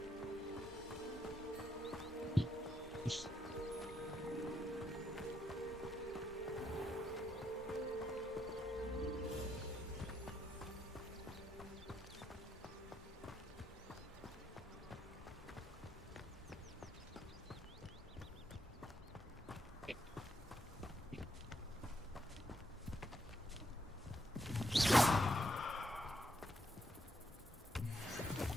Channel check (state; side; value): normal; both; correlation 0.78